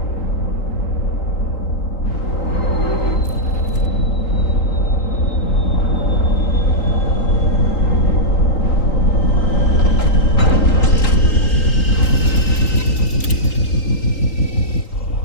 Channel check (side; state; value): right; late; 3.8 ms